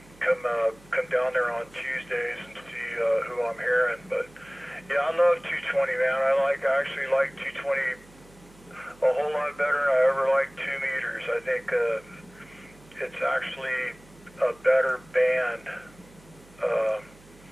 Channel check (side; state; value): right; noise; hum, 25 dB below the sound